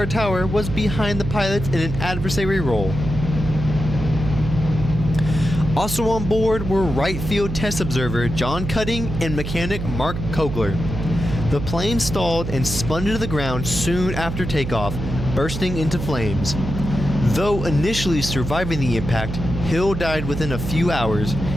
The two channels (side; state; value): right; noise; hum, 5 dB below the sound